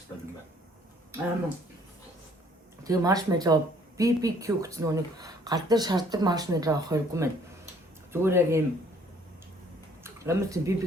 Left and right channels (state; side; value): normal; both; correlation 0.60